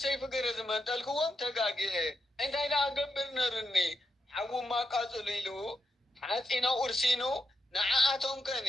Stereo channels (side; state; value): both; normal; correlation 0.85